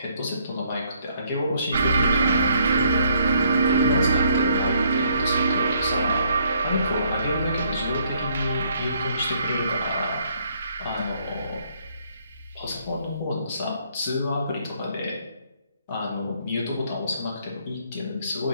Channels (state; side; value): inverted; both; correlation -0.68